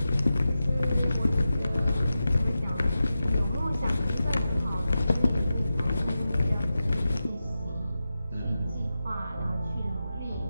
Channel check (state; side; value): inverted; both; correlation -0.91